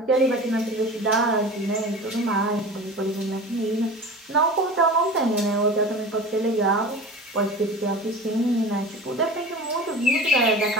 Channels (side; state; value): both; normal; correlation 0.35